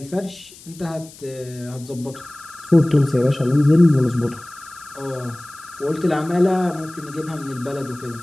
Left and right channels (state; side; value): noise; left; hiss, 20 dB below the sound